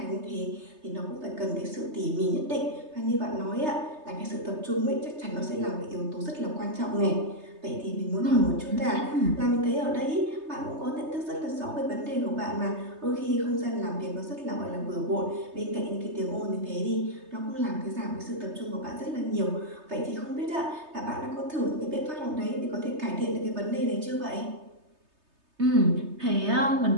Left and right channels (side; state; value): left; late; 3.3 ms